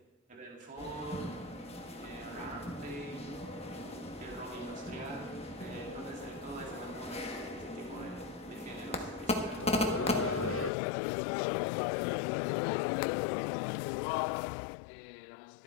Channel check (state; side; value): drops out; right; at 10.7 s